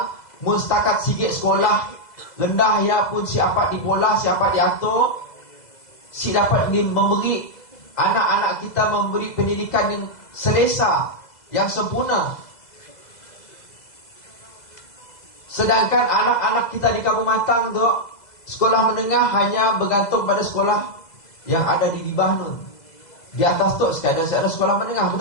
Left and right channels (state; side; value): late; right; 2.0 ms